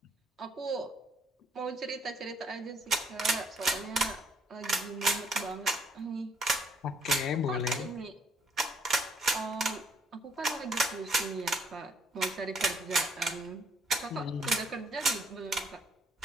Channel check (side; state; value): both; normal; correlation 0.66